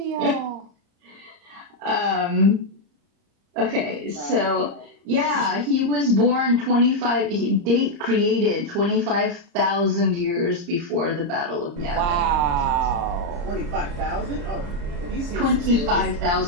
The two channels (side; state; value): left; late; 34 ms